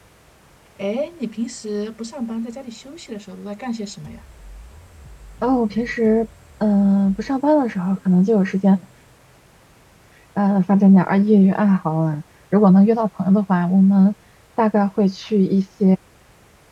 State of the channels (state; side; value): identical; both; correlation 1.00